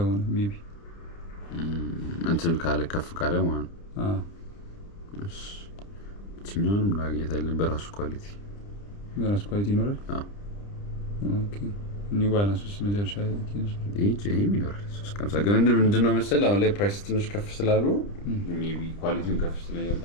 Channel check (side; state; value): right; late; 30 ms